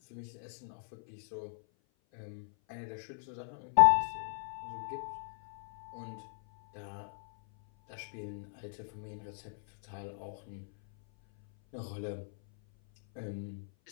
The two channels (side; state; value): right; silent; 53 dB below the other